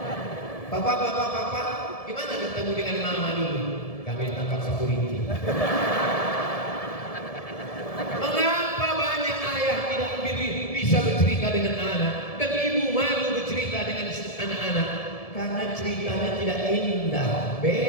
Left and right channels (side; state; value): right; late; 1.7 ms